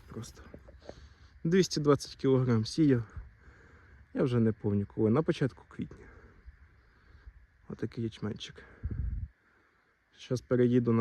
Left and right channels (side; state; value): both; identical; correlation 1.00